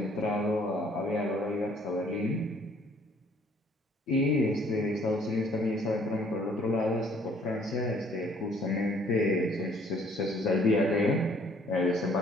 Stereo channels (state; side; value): normal; both; correlation 0.60